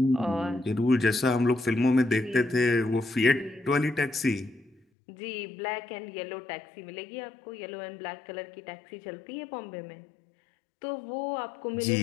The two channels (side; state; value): right; drops out; at 4.8 s